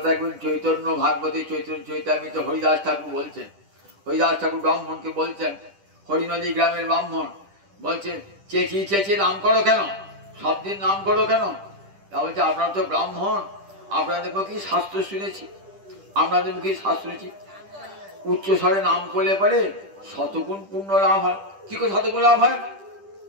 একদিন চৈতন্য ভাগবতী চৈতন্য চৈতামিত হরিদাস ঠাকুর বলছেন। হরিদাস ঠাকুর ব্রাহ্মণকে বলছেন, হরিনদী গ্রামের ব্রাহ্মণ বলছেন চেঁচিয়ে চেঁচিয়ে নাম করো কেন, সব দিন নাম করো কেন? তা বলছে আপনারা তো ব্রাহ্মণ, আপনাদের মুখে শাস্ত্র শুনেছি, আপনাদের মুখে শাস্ত্র শুনেছি উচ্চ স্বরে নাম করলে পরে শতগুণ পূর্ণ লাভ হয়। কি করে শতগুণ লাভ হয়?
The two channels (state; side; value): late; left; 10 ms